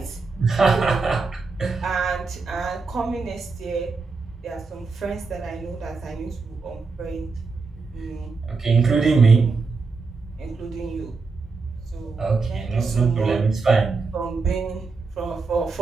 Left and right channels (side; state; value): left; quieter; 4.3 dB